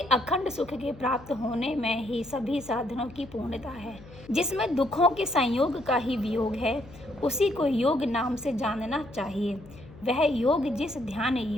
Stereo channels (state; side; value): noise; left; hum, 19 dB below the sound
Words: अखंड सुख के प्राप्त होने में ही सभी साधनों की पूर्णता है। जिसमें दुखों के संयोग का ही वियोग है, उसी को योग नाम से जानना चाहिए। वह योग जिस ध्यान